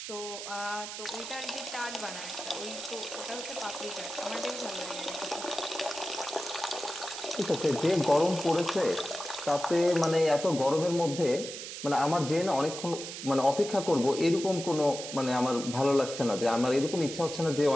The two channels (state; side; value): noise; right; hiss, 9 dB below the sound